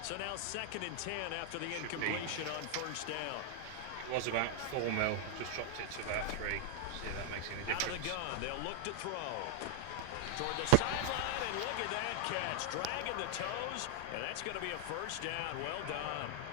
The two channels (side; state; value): both; different; correlation 0.00